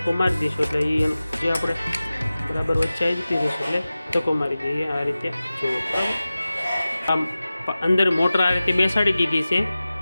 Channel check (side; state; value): both; inverted; correlation -0.96